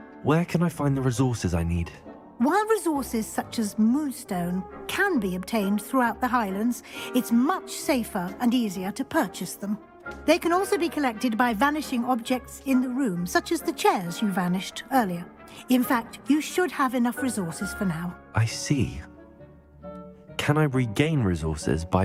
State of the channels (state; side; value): identical; both; correlation 1.00